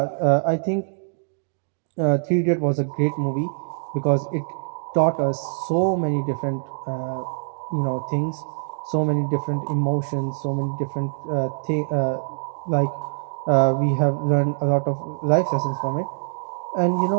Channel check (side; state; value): left; silent; digital silence